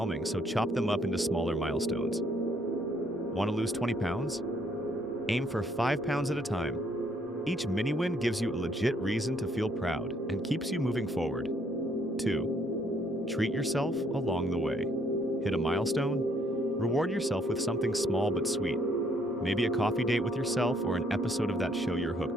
so chop them up into smaller milestones. Want to lose 20 pounds? Aim for 5 pounds at a time. Each mini-win gives you a legit reason to feel proud and keeps you moving forward. 2. Treat yourself along the way. Hit a milestone? Reward yourself with something small but sweet. Maybe a coffee date with yourself or an episode of that show you're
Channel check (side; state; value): both; normal; correlation 0.67